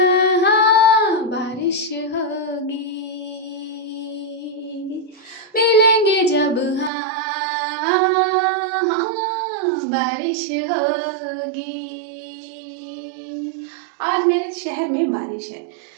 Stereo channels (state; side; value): drops out; left; at 6.9 s